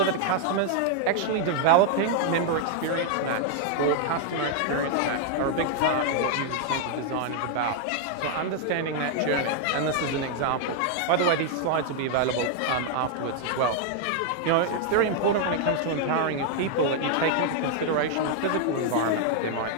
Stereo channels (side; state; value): both; different; correlation 0.00